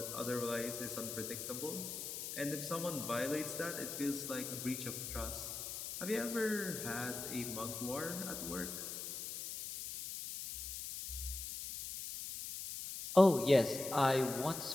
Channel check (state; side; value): noise; left; hiss, 6 dB below the sound